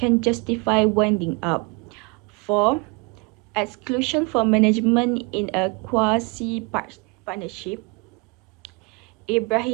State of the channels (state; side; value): quieter; left; 28.9 dB